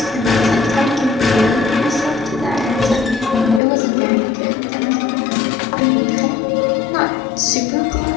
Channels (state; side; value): drops out; right; at 3.6 s